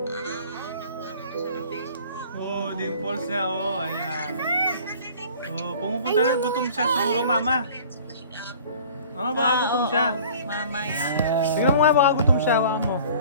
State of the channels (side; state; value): both; inverted; correlation -0.48